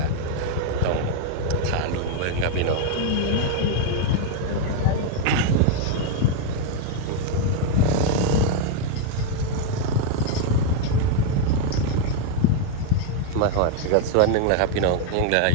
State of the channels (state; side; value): different; both; correlation 0.00